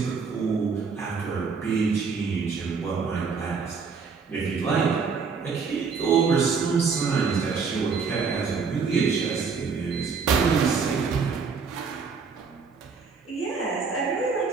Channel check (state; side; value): quieter; left; 5.3 dB